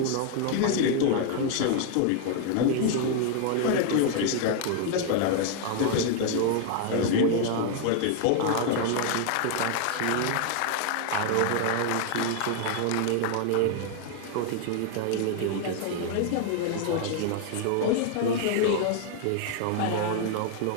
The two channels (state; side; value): different; both; correlation 0.00